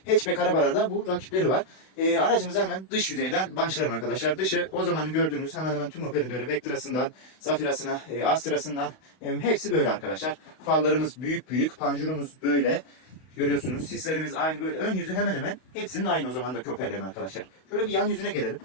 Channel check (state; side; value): late; right; 32 ms